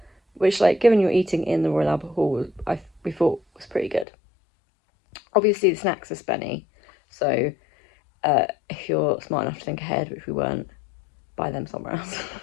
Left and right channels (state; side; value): drops out; right; at 4.0 s